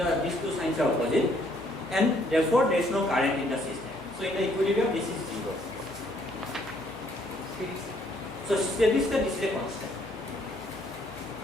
two signs are opposite, and therefore there is no current in the system. So in the equilibrium, this is 0. So steady state, this is a constant.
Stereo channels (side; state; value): left; noise; hum, 22 dB below the sound